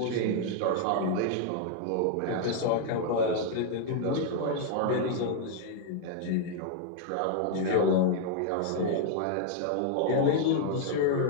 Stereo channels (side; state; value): both; different; correlation 0.00